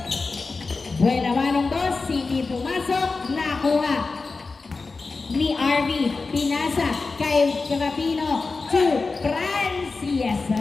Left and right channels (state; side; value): quieter; right; 4.0 dB